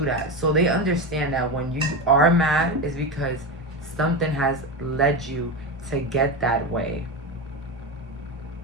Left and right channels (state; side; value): normal; both; correlation 0.18